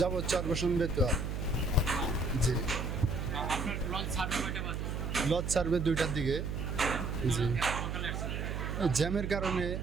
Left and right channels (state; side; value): noise; right; hum, 3 dB below the sound